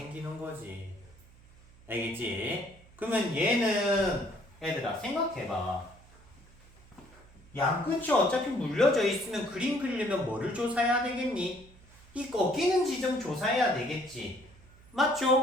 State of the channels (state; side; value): noise; right; hum, 25 dB below the sound